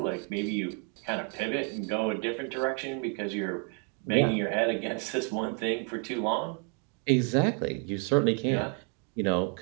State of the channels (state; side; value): quieter; left; 36.0 dB